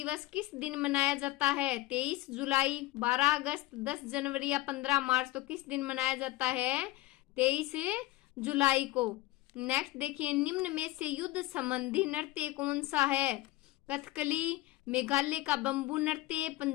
किस दिन मनाया जाता है? 23 जुलाई, 12 अगस्त, 10 जनवरी या 15 मार्च? तो किस दिन मनाया जाता है? 23 जुलाई को। नेक्स्ट देखिए, निम्न में से युद्ध संबंधी नृत्य कौन सा है? कथकली, मेघालय का बंबू नृत्य,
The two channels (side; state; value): right; quieter; 17.9 dB